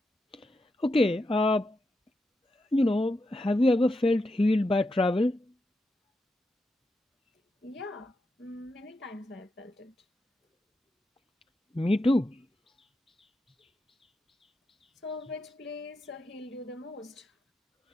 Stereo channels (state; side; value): normal; both; correlation 0.86